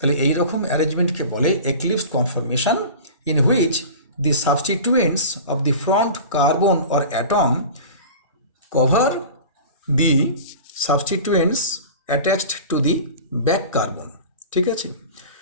এই রকম অ্যারেঞ্জমেন্টকে বলে eclipsed conformation, in which the substituents of the front carbon or atom cover the substituents attached to the back carbon. ঠিক আছে,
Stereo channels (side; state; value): both; inverted; correlation -0.36